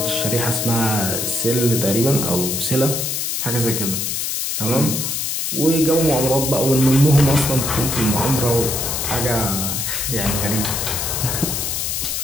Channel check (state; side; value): noise; left; hiss, 1 dB below the sound